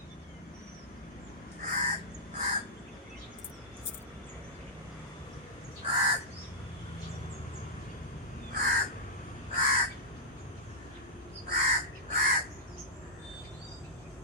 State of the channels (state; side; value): normal; both; correlation -0.11